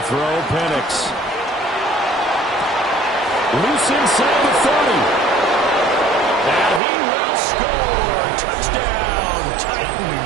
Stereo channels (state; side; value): drops out; left; at 6.8 s